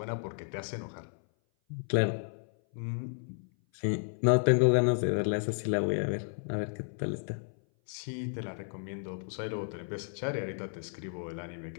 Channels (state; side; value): silent; right; 56 dB below the other